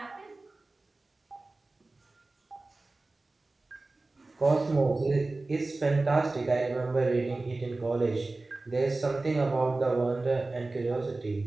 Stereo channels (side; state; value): left; quieter; 3.2 dB